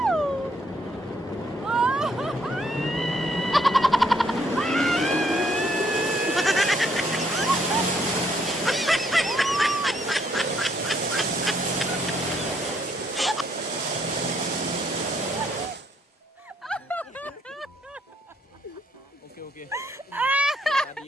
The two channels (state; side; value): normal; both; correlation 0.70